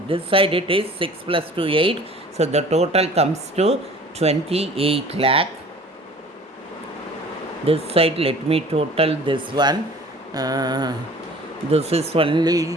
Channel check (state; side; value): normal; both; correlation 0.47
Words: This side it is 6 plus 2, 8. So the total comes to 28 lakh. This side, let me total this one. This is